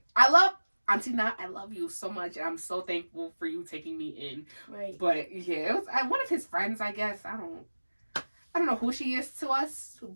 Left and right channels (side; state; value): both; inverted; correlation -1.00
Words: I love Auntie Nat, I love you so much, and I'm so thankful for you taking me in. Right. But yeah, it was one of his friends, I guess. I don't know who she is to us,